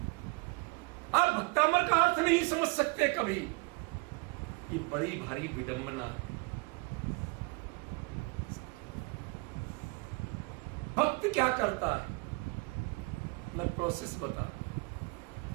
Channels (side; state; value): left; quieter; 28.1 dB